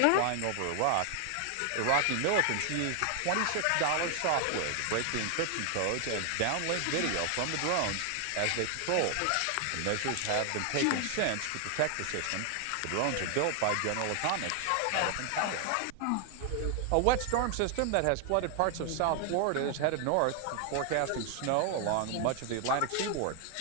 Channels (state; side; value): different; both; correlation 0.00